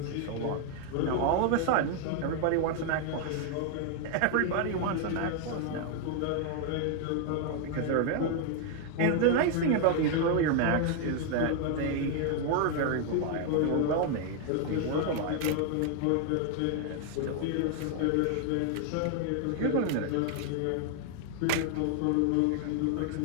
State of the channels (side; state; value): both; different; correlation 0.00